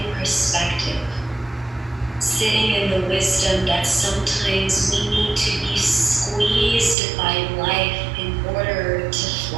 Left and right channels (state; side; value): drops out; left; at 7.0 s